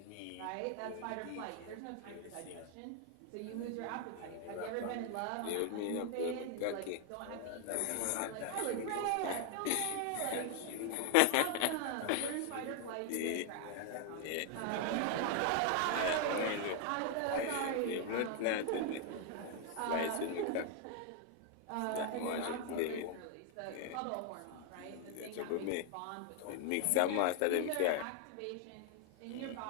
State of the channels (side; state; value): both; different; correlation 0.00